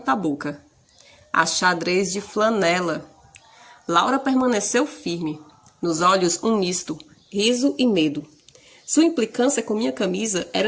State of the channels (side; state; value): both; identical; correlation 1.00